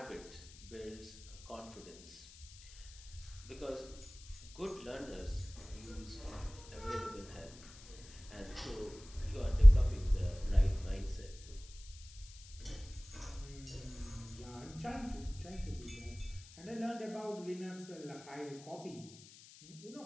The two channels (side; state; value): left; noise; hiss, 19 dB below the sound